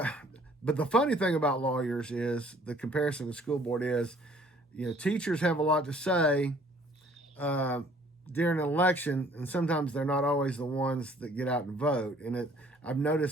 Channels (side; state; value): both; normal; correlation 0.57